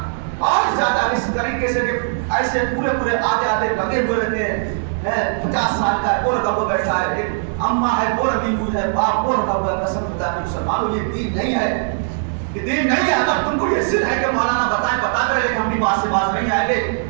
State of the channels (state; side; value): silent; left; digital silence